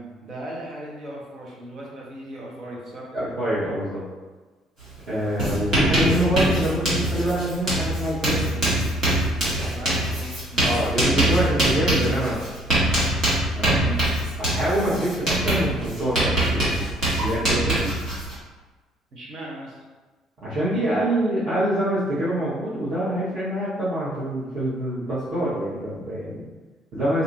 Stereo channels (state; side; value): normal; both; correlation 0.60